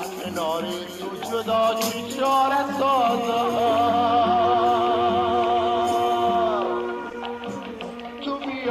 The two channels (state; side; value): identical; both; correlation 1.00